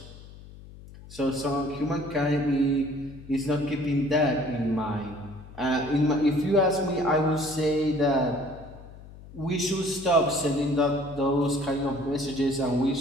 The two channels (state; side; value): noise; left; hum, 18 dB below the sound